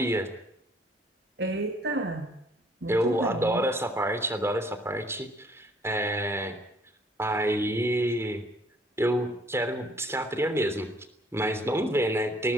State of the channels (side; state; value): both; normal; correlation 0.61